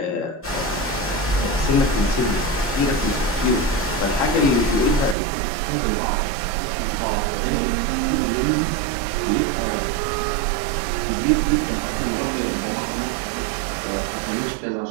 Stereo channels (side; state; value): left; drops out; at 5.2 s